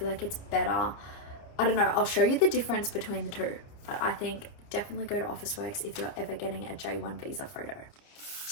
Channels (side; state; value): right; late; 29 ms